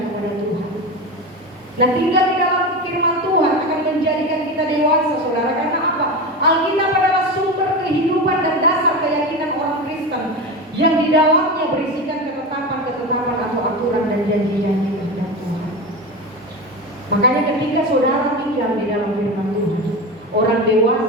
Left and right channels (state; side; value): normal; both; correlation 0.23